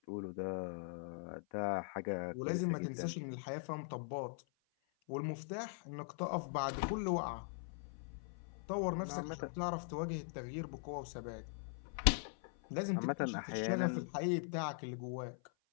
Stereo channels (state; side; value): silent; right; 50 dB below the other